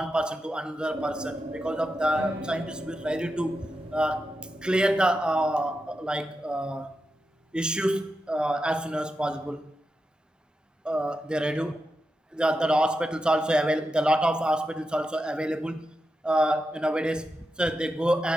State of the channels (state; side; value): normal; both; correlation 0.88